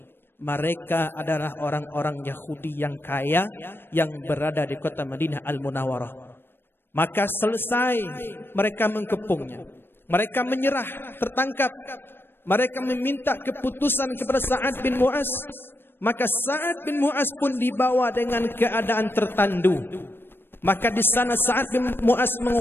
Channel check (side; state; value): right; late; 0.10 ms